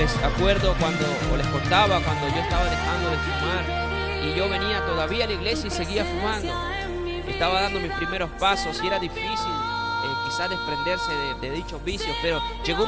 acuerdo les contaba cuando yo estaba dejando de fumar y yo venía todavía a la iglesia y seguía fumando. Estaba dando mis primeros pasos y era difícil quizás desprenderse de dichos vicios, pero llegó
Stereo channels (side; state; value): both; identical; correlation 1.00